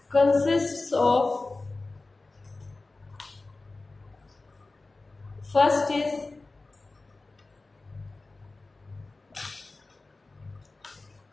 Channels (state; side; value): quieter; right; 3.4 dB